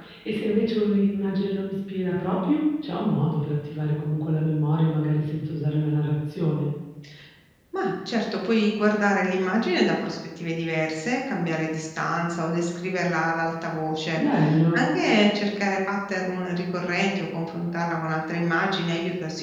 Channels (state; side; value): identical; both; correlation 1.00